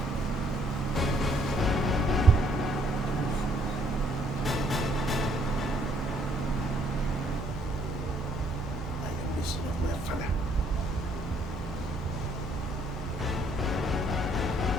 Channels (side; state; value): both; normal; correlation 0.66